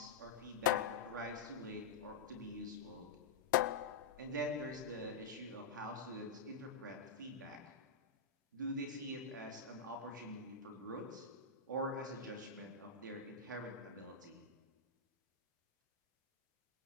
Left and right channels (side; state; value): right; quieter; 4.9 dB